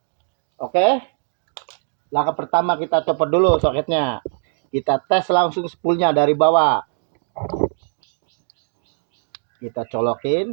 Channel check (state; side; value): silent; left; 63 dB below the other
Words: Oke. Langkah pertama kita copot dulu soketnya. Kita tes langsung spoolnya dari bawah. Kita